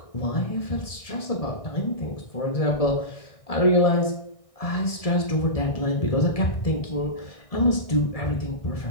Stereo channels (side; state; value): right; late; 1.6 ms